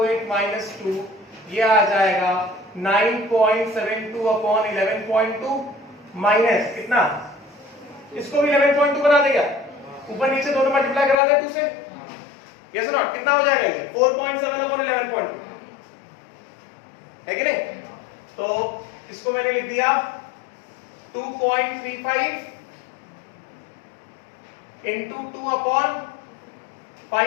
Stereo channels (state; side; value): drops out; right; at 11.2 s